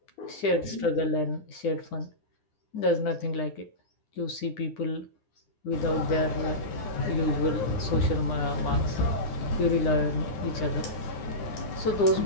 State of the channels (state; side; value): late; right; 9.8 ms